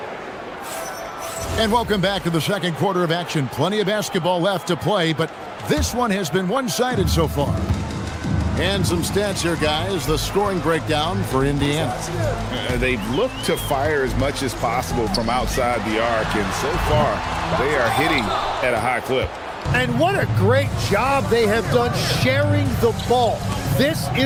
And welcome back to the second quarter of action. Plenty of basketball left to play, but this one has been one-sided so far. And some stats here, guys. The scoring breakdown for Indiana. They've looked to fire as much as possible from outside the arc, and so far, they are hitting at a high clip. And what a great job they have done sharing the ball. This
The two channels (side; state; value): both; identical; correlation 1.00